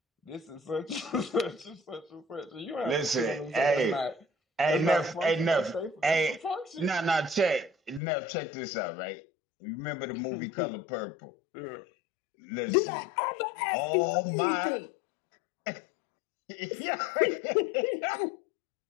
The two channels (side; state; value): right; drops out; at 8.0 s